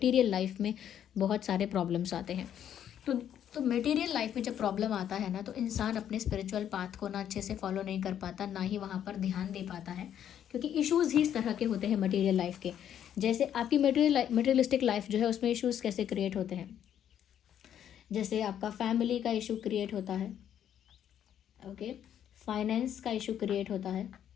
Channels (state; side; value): quieter; right; 9.9 dB